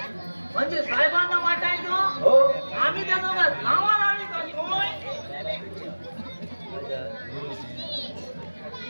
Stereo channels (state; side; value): inverted; both; correlation -1.00